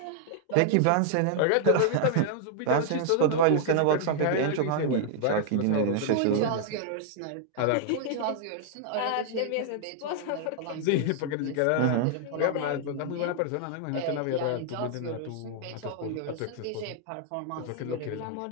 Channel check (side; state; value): both; different; correlation -0.01